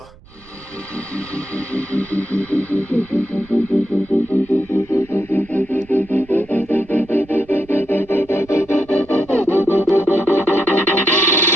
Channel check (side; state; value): right; noise; rumble, 25 dB below the sound